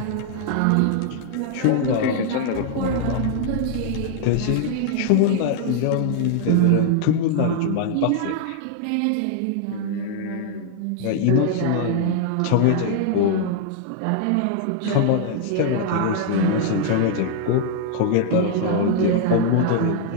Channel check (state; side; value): different; both; correlation -0.01